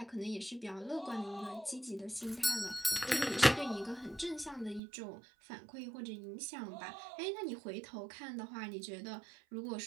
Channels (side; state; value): left; drops out; at 4.8 s